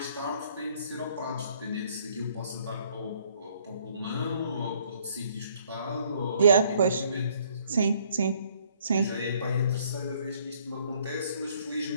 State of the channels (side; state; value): both; inverted; correlation -0.63